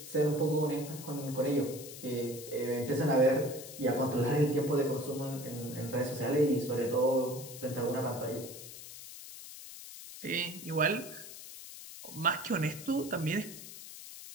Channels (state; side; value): noise; left; hiss, 13 dB below the sound